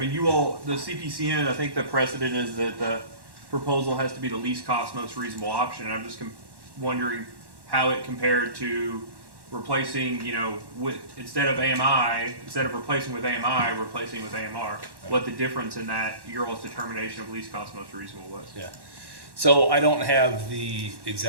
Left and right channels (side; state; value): left; late; 1.1 ms